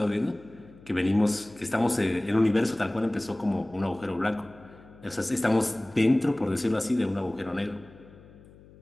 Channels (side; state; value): left; noise; hum, 23 dB below the sound